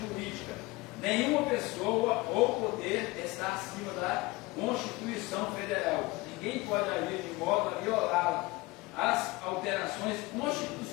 jurídica. Nenhuma pessoa ou poder está acima da Constituição Federal. Ninguém pode agir de modo a violá-la. As alterações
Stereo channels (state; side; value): quieter; right; 22.0 dB